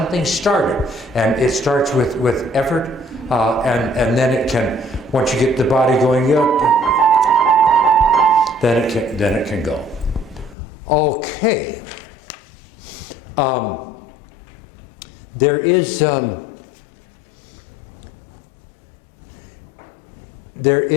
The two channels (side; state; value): right; drops out; at 10.6 s